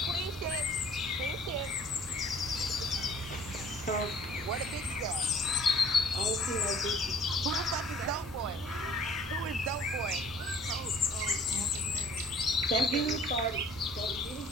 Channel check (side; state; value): both; normal; correlation 0.54